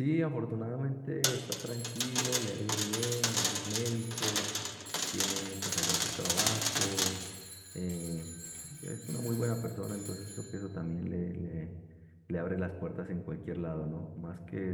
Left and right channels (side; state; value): both; identical; correlation 1.00